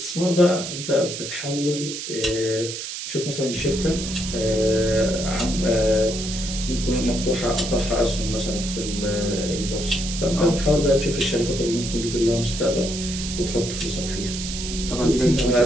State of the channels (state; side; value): noise; right; hiss, 7 dB below the sound